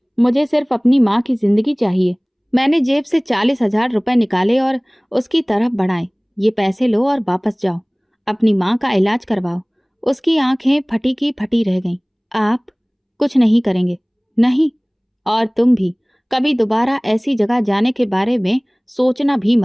मुझे सिर्फ अपनी माँ की जिंदगी चाहिए। मैंने जेब से 40,000 रुपए निकाले और उसकी तरफ बढ़ाए। ये पैसे लो और वापस जाओ, अपनी माँ का इलाज करवाओ। उसकी आंखें फटी की फटी रह गईं। आप कुछ नहीं करेंगे? नहीं, और तुम भी कभी दोबारा ऐसी जगह जाने के बारे में सोचना भी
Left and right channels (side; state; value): both; identical; correlation 1.00